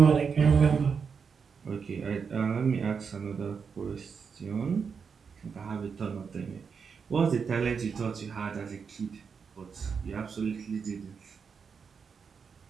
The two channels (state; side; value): quieter; left; 6.0 dB